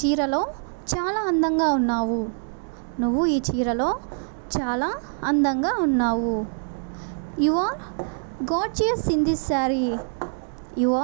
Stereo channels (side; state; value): left; silent; digital silence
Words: చీరలో చాలా అందంగా ఉన్నావు. నువ్వు ఈ చీరలో చాలా అందంగా ఉన్నావు. You are gorgeous in this sari. You